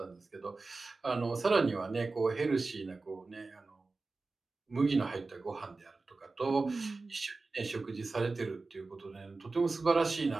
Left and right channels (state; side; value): quieter; left; 3.7 dB